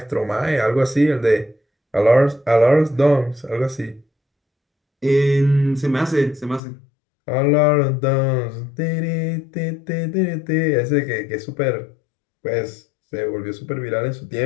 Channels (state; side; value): drops out; right; at 6.6 s